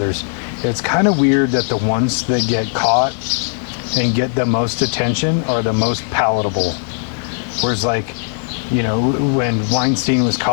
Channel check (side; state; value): right; silent; digital silence